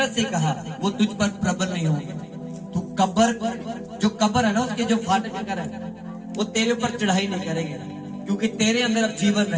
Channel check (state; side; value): identical; both; correlation 1.00